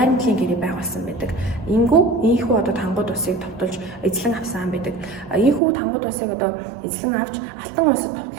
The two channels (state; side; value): drops out; left; at 5.6 s